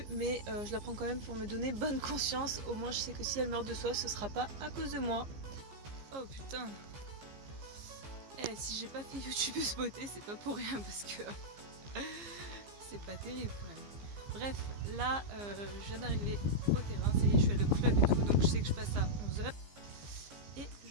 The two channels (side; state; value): left; late; 15 ms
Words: mais je la prends quand même pour me donner bonne conscience. Au moins je sais que si elle meurt de soif ce sera pas à cause de moi. Oh putain. Si j'ai pas fait youtubeuse beauté, c'est pas pour rien parce que c'est pas terrible quand même. Bref, là je viens d'arriver au terrain, ça y est, je suis allée au club et tout, donc je sais que je passe à 11h. Et